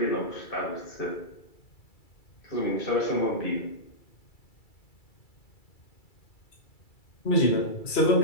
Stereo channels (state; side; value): late; right; 2.3 ms